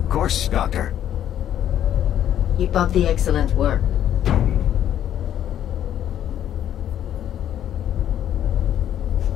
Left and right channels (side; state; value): right; quieter; 10.7 dB